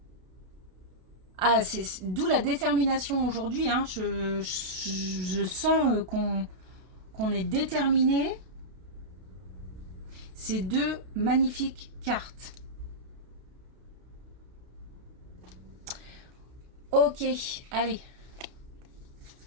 Ah, c'est d'où la détermination aujourd'hui. Hein. Je sens qu'on est déterminé. Ces deux magnifiques cartes. Ok, allez.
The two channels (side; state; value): left; late; 32 ms